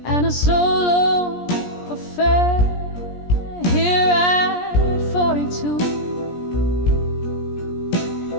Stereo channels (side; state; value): right; late; 17 ms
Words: and a solo affair. Here at 42,